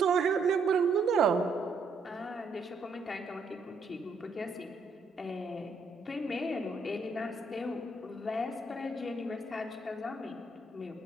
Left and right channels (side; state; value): left; quieter; 3.5 dB